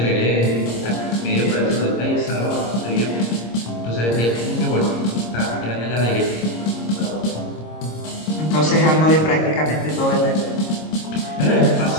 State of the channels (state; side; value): late; right; 26 ms